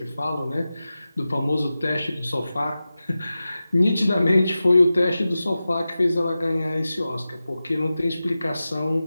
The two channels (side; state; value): both; inverted; correlation -0.94